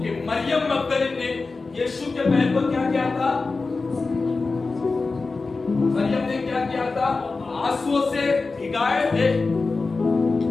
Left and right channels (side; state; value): right; quieter; 3.9 dB